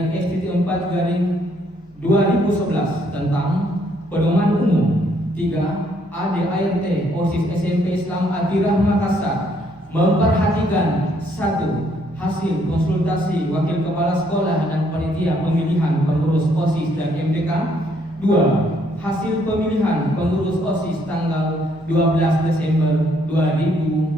tentang Pedoman Umum. 3. ADART OSIS SMP Islam Atirah Makassar memperhatikan 1. Hasil konsultasi Wakil Kepala Sekolah dan Panitia Pemilihan Pengurus OSIS dan MPK. 2. Hasil pemilihan pengurus OSIS tanggal 12 Desember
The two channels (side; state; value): both; normal; correlation 0.69